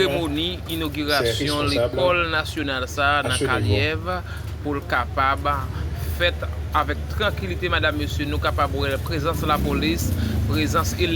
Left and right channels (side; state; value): both; identical; correlation 1.00